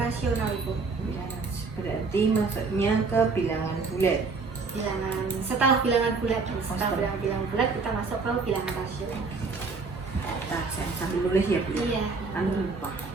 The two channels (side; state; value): left; quieter; 4.3 dB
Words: Ibu. Berarti masuknya ke bilangan bulat. Setelah bilangan bulat kita masuk ke bilangan rasional. Nah, saya sambil nulis ya Bu. Iya. Anu lupa.